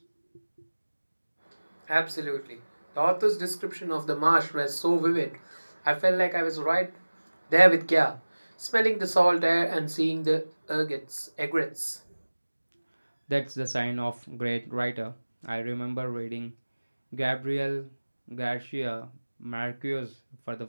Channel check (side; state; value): both; inverted; correlation -1.00